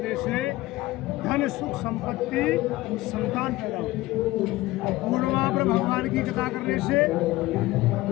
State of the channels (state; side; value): quieter; right; 18.4 dB